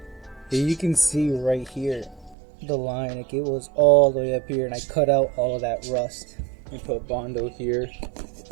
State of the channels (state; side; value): drops out; left; at 2.4 s